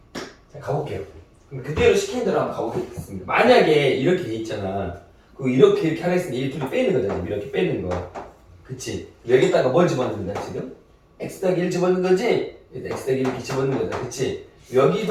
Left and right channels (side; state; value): both; identical; correlation 1.00